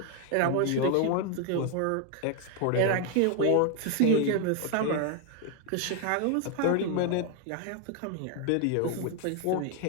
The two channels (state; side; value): different; both; correlation 0.01